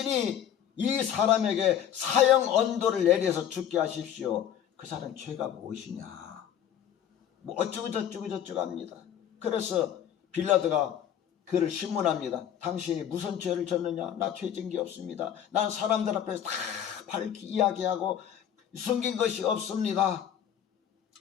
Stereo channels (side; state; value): right; quieter; 9.8 dB